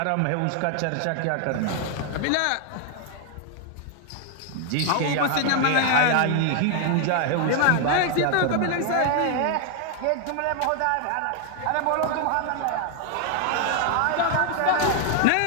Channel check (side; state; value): both; different; correlation 0.00